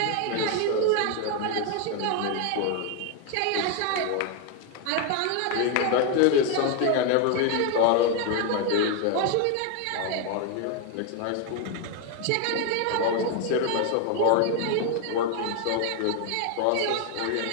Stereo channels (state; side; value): different; both; correlation 0.01